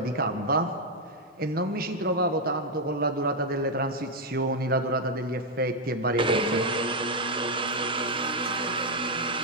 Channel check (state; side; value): normal; both; correlation 0.01